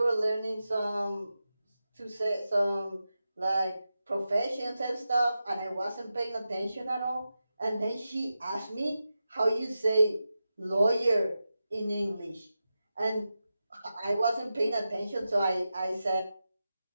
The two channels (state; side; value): inverted; both; correlation -0.91